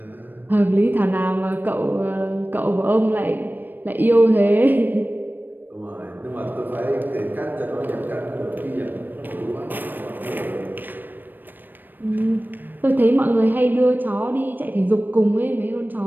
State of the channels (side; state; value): left; late; 0.092 ms